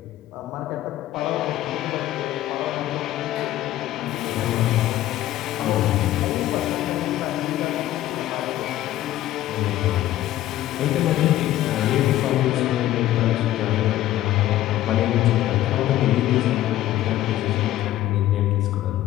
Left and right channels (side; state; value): right; quieter; 13.9 dB